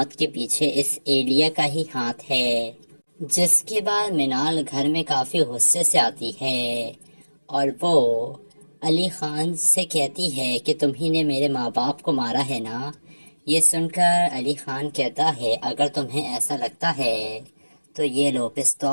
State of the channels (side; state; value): both; inverted; correlation -1.00